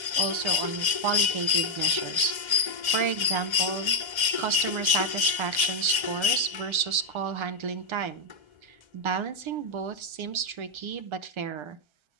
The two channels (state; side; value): late; left; 1.3 ms